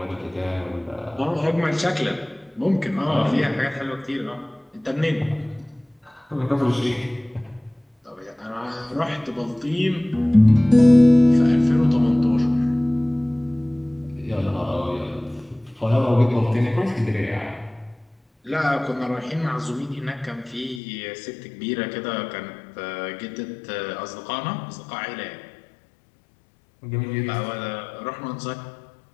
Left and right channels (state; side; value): drops out; right; at 20.8 s